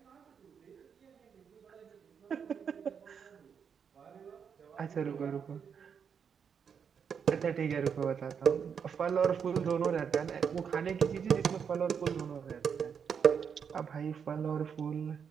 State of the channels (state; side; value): quieter; left; 7.0 dB